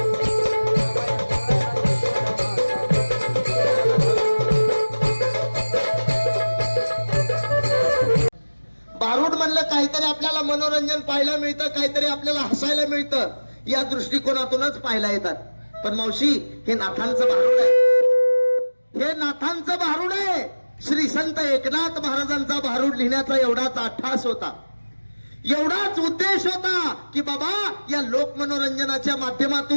भारूड म्हणलं काहीतरी आपल्याला मनोरंजन पाहायला मिळतं काहीतरी आपल्याला हसायला मिळतं या दृष्टिकोनातूनच पाहायला येतात पण मावशी हे नाथांचं भारूड आहे हे नाथांचं भारूड आहे श्री संत एकनाथ महाराजांचा भारूड लिहिण्याचा एवढाच अट्टास होता एवढाच उद्देश होता की बाबा या लोक मनोरंजनाच्या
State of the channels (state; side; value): inverted; both; correlation -1.00